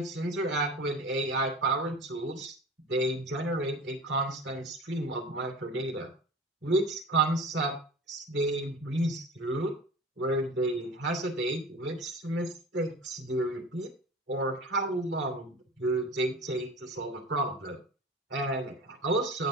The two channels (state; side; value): normal; both; correlation 0.36